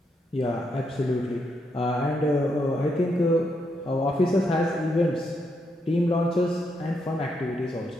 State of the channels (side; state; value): both; normal; correlation 0.79